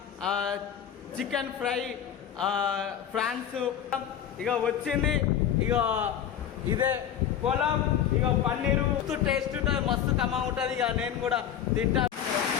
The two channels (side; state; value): right; quieter; 9.4 dB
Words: chicken fry, prawns ఇక వచ్చింది. ఇక ఇదే పులావ్, ఇక పన్నీరు టేస్ట్ ఉంటుంది, మస్తు కమ్మగా ఉంటుంది. ఇక నేను కూడా తింటా.